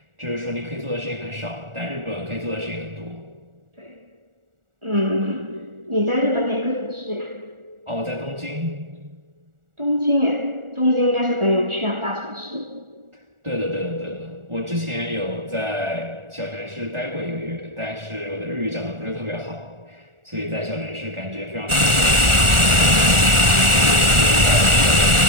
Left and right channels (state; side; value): late; left; 1.4 ms